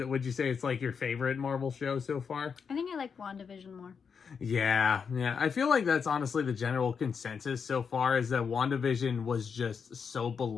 you say it's like your favorite Marvel show so far? I think I like WandaVision more. Yeah. I feel like that's honestly the general consensus so far, is that WandaVision was just so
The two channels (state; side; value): quieter; right; 6.2 dB